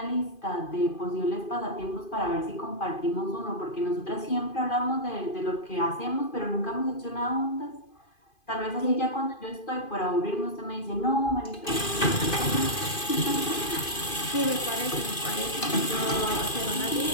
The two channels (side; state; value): right; late; 2.5 ms